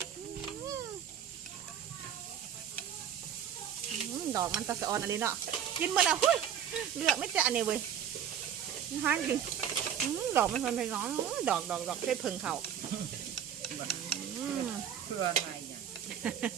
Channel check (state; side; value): quieter; left; 8.9 dB